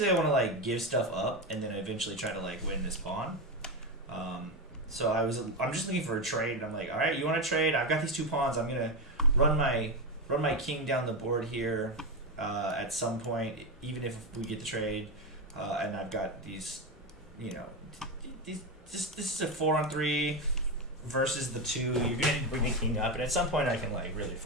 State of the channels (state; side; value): normal; both; correlation 0.13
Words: I want to like give stuff up and then eventually try to like win this pawn. So I'm just looking for a trade, and I'm like, all right, you want to trade? I've got these two pawns. I'm gonna run my king down the board here at some point, even if we get the trade, and I've got these, this is a 4-on-3. Versus the 2, you're gonna bring the king up, and at some point I can like really